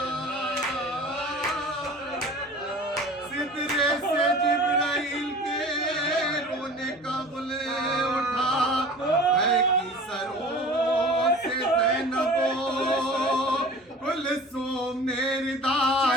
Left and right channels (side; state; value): both; normal; correlation 0.41